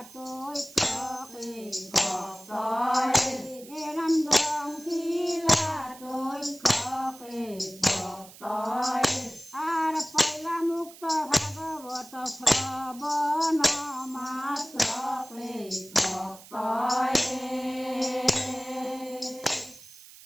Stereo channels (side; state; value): right; noise; hiss, 19 dB below the sound